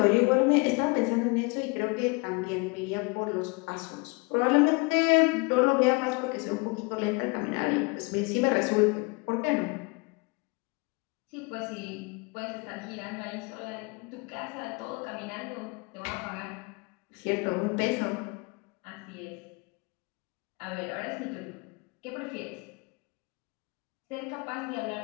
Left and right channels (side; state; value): right; quieter; 29.5 dB